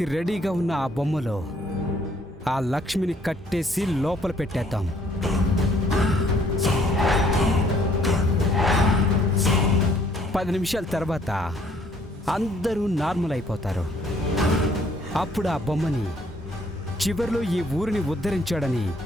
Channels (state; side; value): normal; both; correlation 0.63